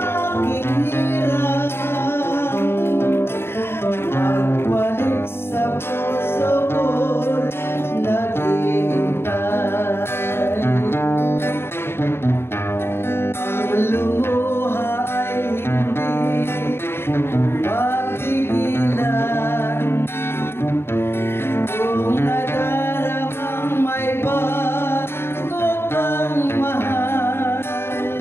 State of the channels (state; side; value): late; right; 0.11 ms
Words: aking hirap, nagbalik sa puso ko naghihintay. Ang lumuha ay hindi mapigilan, kung nadaramang may bago kang mahal.